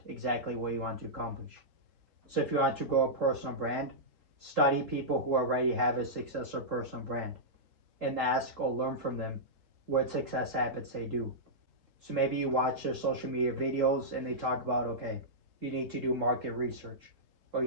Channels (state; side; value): late; left; 3.8 ms